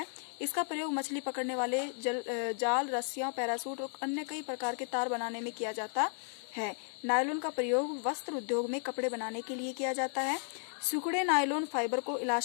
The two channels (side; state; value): right; silent; 55 dB below the other